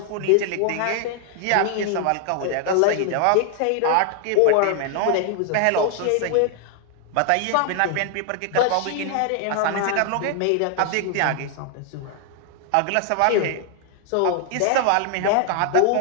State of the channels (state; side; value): different; both; correlation 0.00